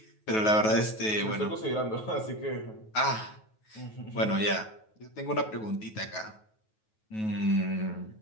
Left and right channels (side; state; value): right; late; 9.3 ms